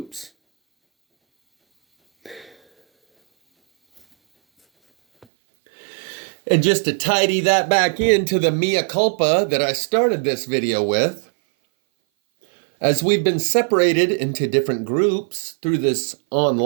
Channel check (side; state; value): left; drops out; at 5.2 s